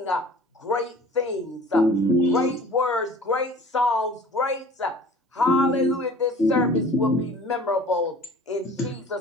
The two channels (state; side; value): normal; both; correlation 0.46